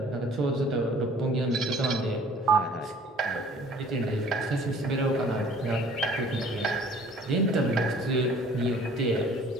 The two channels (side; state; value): both; normal; correlation 0.52